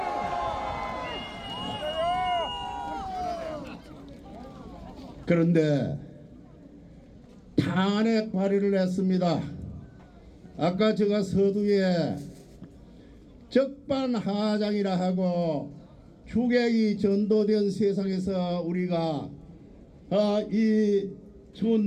그런데 탄핵 발의를 했습니다. 아까 제가 서두에 적반하장이라 하고 주객이 전도된 세상에서 우리가 이 추운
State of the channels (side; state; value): both; identical; correlation 1.00